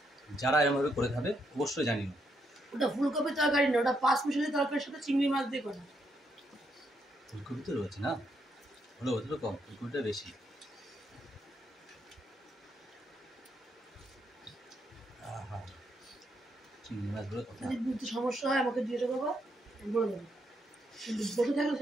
যারা এরকমভাবে করে খাবে অবশ্যই জানিও। ওটা ফুলকপি তরকারি না, ওটা পাঁচ মিশালি তরকারির সাথে চিংড়ি মাছ দিয়ে করা। ফুলকপি তো রয়েছে না, হলো ওদের কম, ফুলকপিটা বেশি। চিংড়ি মাছগুলো কথা যদি বুঝতে সমস্যা হয় আমাকে দিয়ে দেবো, বলে দেবো। কিন্তু বসে থাকলে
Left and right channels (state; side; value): normal; both; correlation 0.77